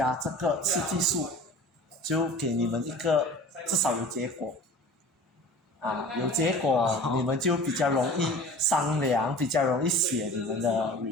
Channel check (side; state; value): both; normal; correlation 0.41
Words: 这个刺激素，就给你们一个至少有结果，有结果你们就比较容易商量，比较容易写你们的